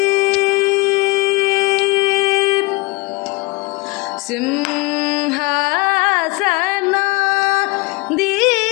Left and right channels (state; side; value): quieter; right; 25.5 dB